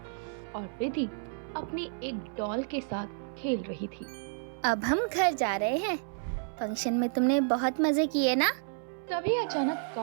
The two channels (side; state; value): left; silent; 57 dB below the other